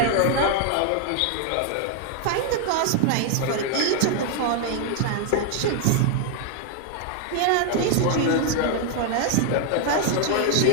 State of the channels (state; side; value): different; both; correlation 0.00